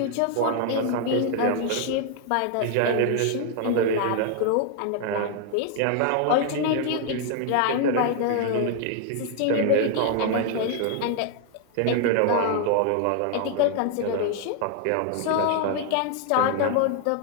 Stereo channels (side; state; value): both; different; correlation 0.00